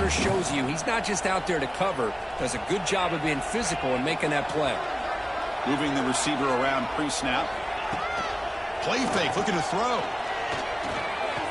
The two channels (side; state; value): both; identical; correlation 1.00